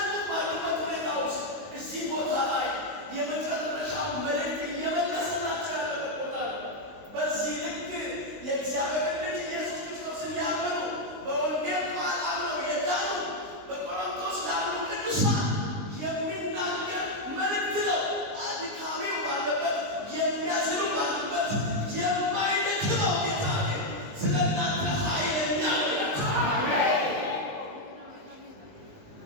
ባሉበት ሁኔታ ውስጥ እዚህ ቦታ ላይ የመጨረሻው መልእክት እየመለሰላቸው ያለበት ቦታ ነው። በዚህ ልክ የእግዚአብሔር ልጅ ኢየሱስ ክርስቶስን ያመኑ በወንጌል ቃል አምነው የዳኑ በቆሮንቶስ ላሉ ቅዱሳን የሚናገር መልእክት ነው። አድካሚው ባለበት የሚያዝኑ ባሉበት የማይደክመው ጌታ ግን ስለ እናንተ ኃይለኛ ነው ይላል።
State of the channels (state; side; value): late; left; 19 ms